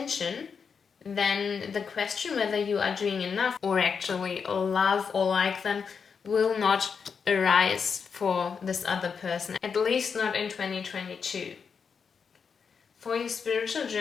then the question whether you are doing enough or actually love or like them will not arise for this other person, at least not in 2022. For your spiritual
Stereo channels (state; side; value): quieter; right; 6.1 dB